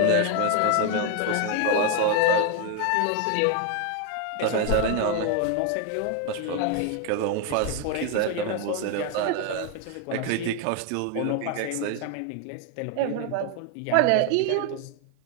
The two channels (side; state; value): both; different; correlation 0.01